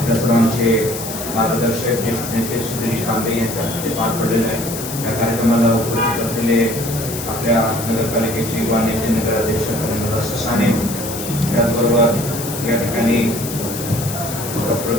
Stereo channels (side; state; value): left; noise; hiss, 8 dB below the sound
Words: सर्वांचे मार्गदर्शक ज्येष्ठ नेते सुधीर तांबे यांच्या हस्ते पार पडलेलं आहे. या कार्यक्रमाला उपस्थित असलेले आपल्या नगरपालिकेचे युवा नेते नगराध्यक्ष ससाने, त्याचबरोबर या ठिकाणी डॉक्टर